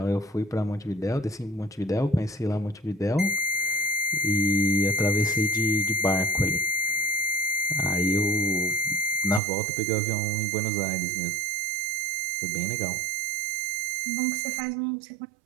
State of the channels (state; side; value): drops out; left; at 9.4 s